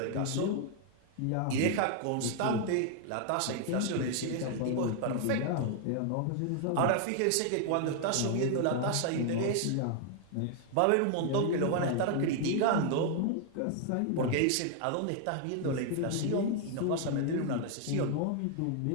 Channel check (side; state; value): both; different; correlation 0.00